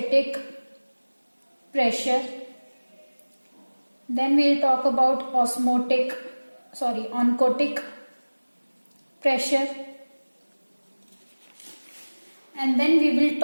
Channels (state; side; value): inverted; both; correlation -1.00